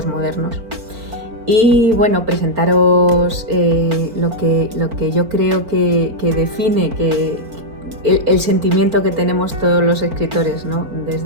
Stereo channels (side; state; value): left; late; 4.5 ms